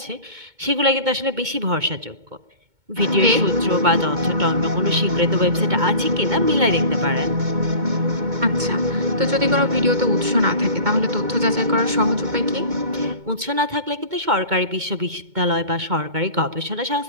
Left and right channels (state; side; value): late; left; 2.2 ms